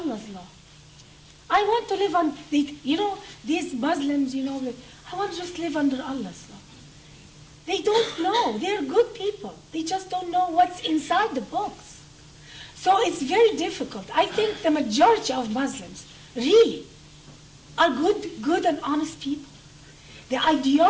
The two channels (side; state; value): both; identical; correlation 1.00